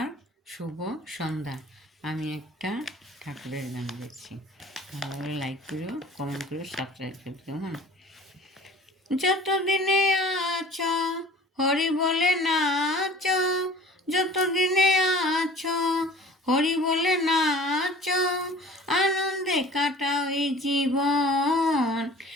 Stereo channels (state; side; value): normal; both; correlation 0.46